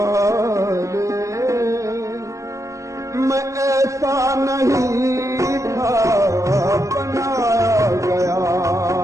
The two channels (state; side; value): late; left; 0.15 ms